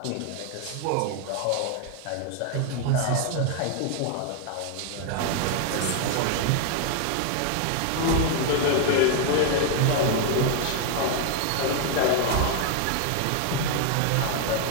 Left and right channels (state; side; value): different; both; correlation 0.00